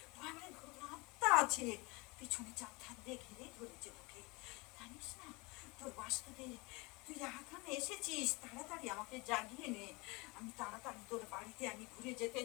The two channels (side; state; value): right; quieter; 26.1 dB